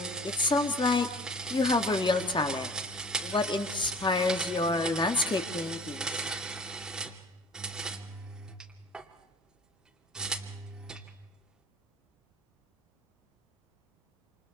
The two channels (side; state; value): both; normal; correlation 0.45